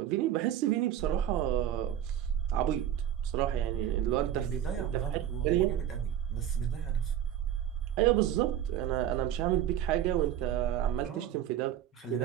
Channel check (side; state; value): left; quieter; 10.9 dB